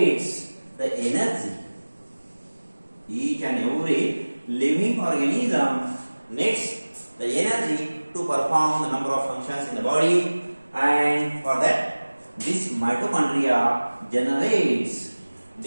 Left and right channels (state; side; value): inverted; both; correlation -1.00